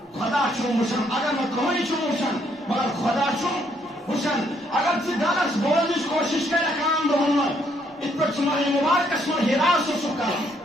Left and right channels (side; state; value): both; normal; correlation 0.70